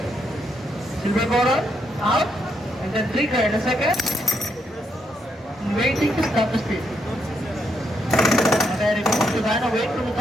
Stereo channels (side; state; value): both; normal; correlation 0.78